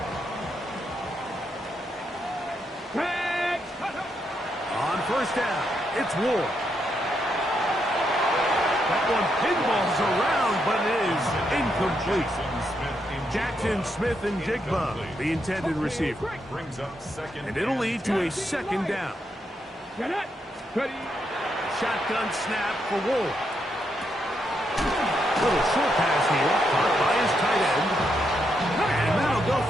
On first down, it's Ward. That one pinballs around, but it is incomplete. Jackson Smith and Jigba, the intended receiver. Brings up second. And it'll lead to a second down. Shotgun snap for Ward. Little short pass here, caught by his tight end. And that'll go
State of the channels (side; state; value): both; normal; correlation 0.80